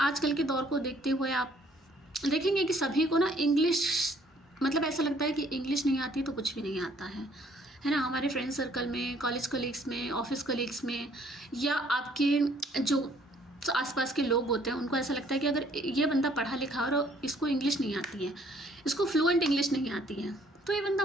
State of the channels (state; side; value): normal; both; correlation 0.62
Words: के दौर को देखते हुए आप देखेंगे कि सभी को ना इंग्लिश, मतलब ऐसा लगता है कि इंग्लिश नहीं आती तो कुछ भी नहीं आता है ना। हमारे फ्रेंड सर्कल में, कॉलेज कलीग्स में, ऑफिस कलीग्स में, या आपके जो आसपास के लोग होते हैं उनको ऐसा लगता है कि अगर ये बंदा पढ़ा लिखा और इसको इंग्लिश नहीं आती है, इसको फ्लुएंट इंग्लिश नहीं आती है, तो ये बंदा